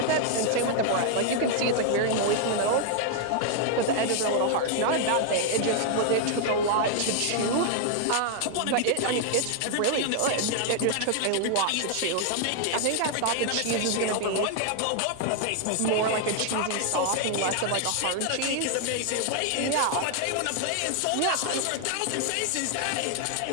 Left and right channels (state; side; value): different; both; correlation 0.00